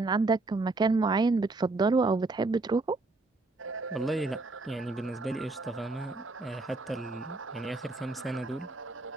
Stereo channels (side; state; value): left; quieter; 3.3 dB